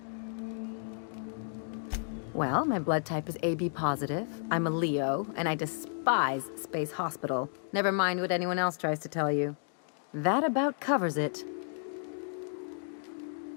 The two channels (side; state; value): right; silent; digital silence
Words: Well, my blood type is AB positive. I'm a Leo, and I despise Space Hospital. Never mind what anyone else tries to tell you. That about covers it.